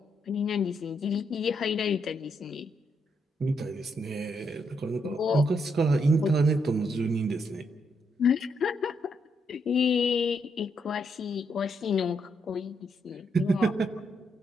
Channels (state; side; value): normal; both; correlation 0.77